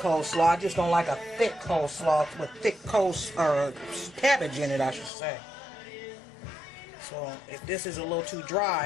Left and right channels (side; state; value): right; drops out; at 5.1 s